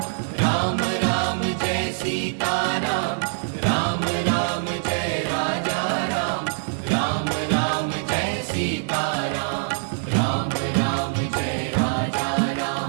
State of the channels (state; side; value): silent; left; 63 dB below the other